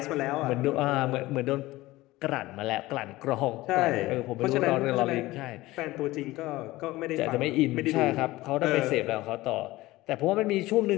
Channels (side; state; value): right; quieter; 18.6 dB